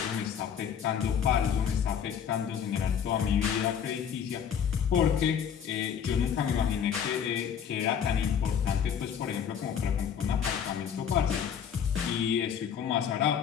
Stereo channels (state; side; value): quieter; right; 8.0 dB